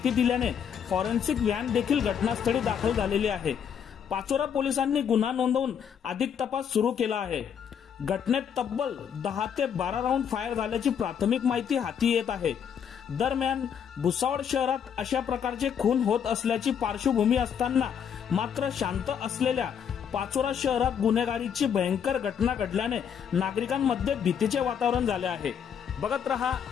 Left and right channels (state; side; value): quieter; right; 8.0 dB